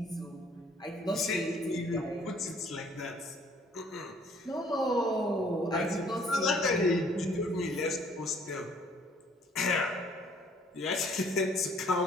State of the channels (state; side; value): normal; both; correlation 0.59